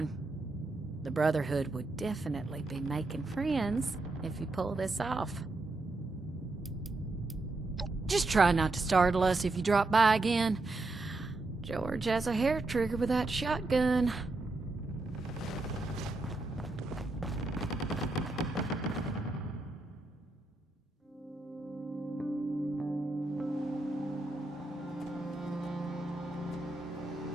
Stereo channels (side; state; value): left; quieter; 3.1 dB